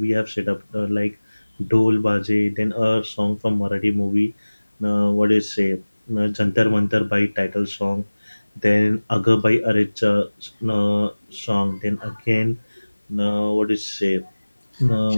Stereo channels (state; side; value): inverted; both; correlation -1.00